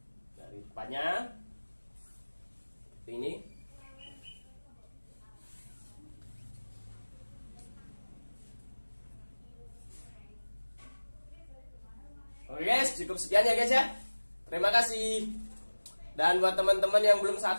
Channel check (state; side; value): inverted; both; correlation -1.00